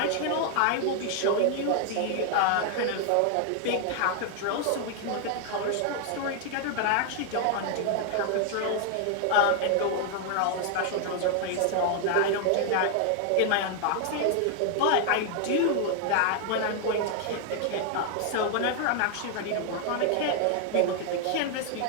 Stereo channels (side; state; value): both; different; correlation 0.00